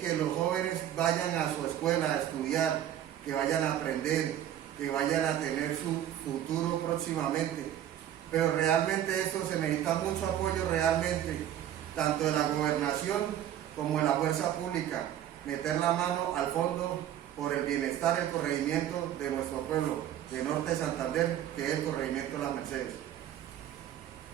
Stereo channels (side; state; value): left; quieter; 11.3 dB